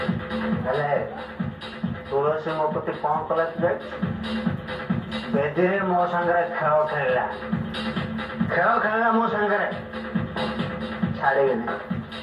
ହେଲେ ତୁଳସୀ ମୋ ପ୍ରତି କଣ କଲା ତୁ ଜାଣିଛୁ? ବେଦିରେ ମୋ ସାଙ୍ଗରେ ଖେଳ ଖେଳିଲା ମୋ ସାଙ୍ଗରେ। ଛାଡ଼ିବିନି,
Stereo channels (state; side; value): identical; both; correlation 1.00